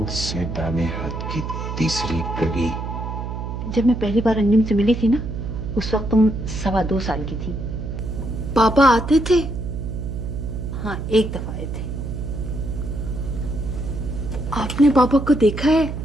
से दाने हाथ की तीसरी गली। जब मैं पहली बार अंजुम से मिली थी ना, उस वक्त तुम 2.25 साल की थी। पापा आते थे? हाँ, एक दफा आए थे। आपने पापा को देखा है?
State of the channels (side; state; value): right; noise; hum, 5 dB below the sound